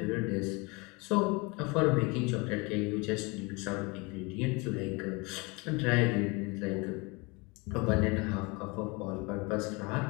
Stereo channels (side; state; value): right; quieter; 27.4 dB